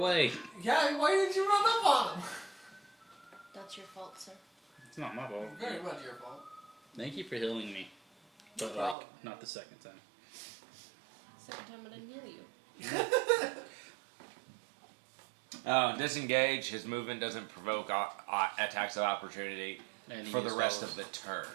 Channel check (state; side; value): drops out; left; at 9.0 s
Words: Yeah, why didn't you run up on him? That's your fault, sir. It's not my fault. Very much your fault. Thank you for healing me. But, No like, problem. not the second time. Second time I didn't heal you. Disengage. His movement doesn't provoke attacks of opportunity And he for the used rest those. of the turn.